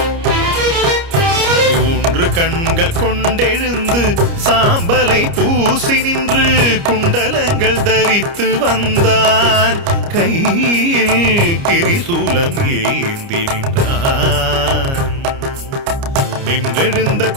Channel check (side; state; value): left; late; 29 ms